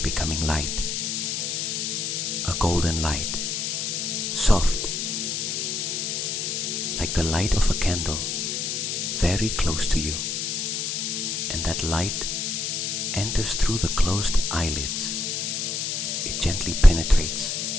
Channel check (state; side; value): noise; left; hiss, 1 dB below the sound